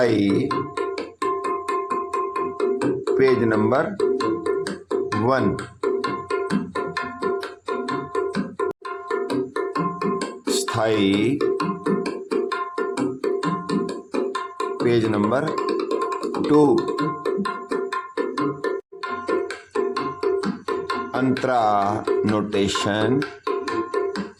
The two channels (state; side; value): identical; both; correlation 1.00